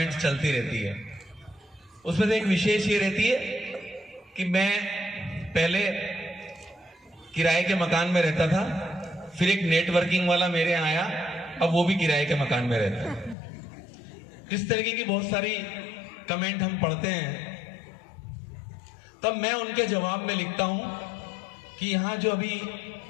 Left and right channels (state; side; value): drops out; right; at 13.4 s